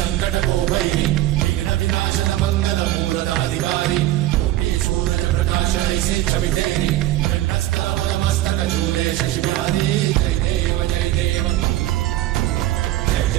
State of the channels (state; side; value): quieter; left; 14.9 dB